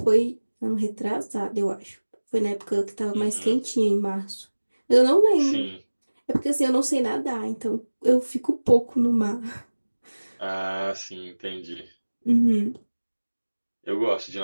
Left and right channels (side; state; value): both; inverted; correlation -1.00